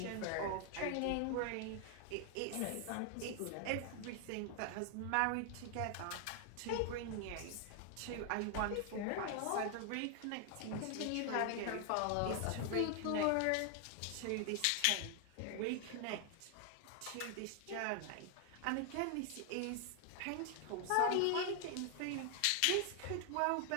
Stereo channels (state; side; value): different; both; correlation 0.00